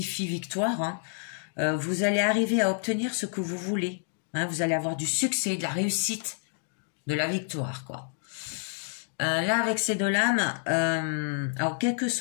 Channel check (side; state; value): right; silent; digital silence